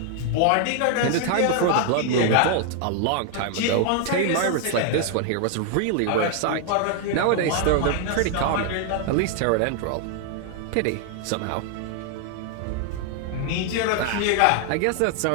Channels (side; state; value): both; different; correlation 0.00